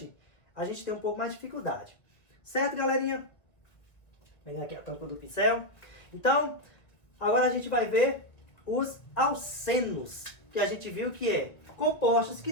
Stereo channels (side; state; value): right; late; 2.0 ms